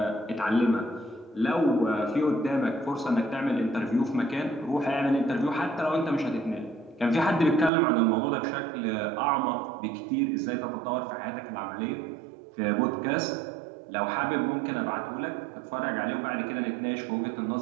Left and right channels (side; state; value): left; drops out; at 7.7 s